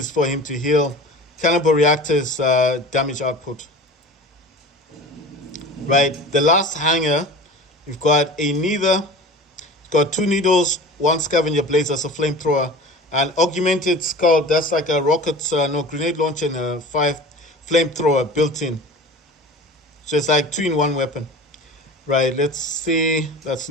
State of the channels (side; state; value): both; normal; correlation 0.37